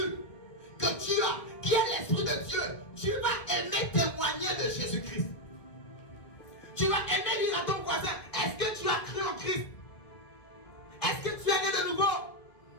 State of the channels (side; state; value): right; late; 1.8 ms